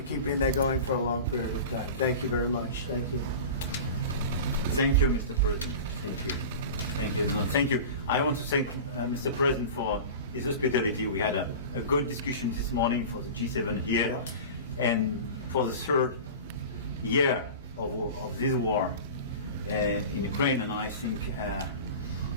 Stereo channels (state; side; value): inverted; both; correlation -0.33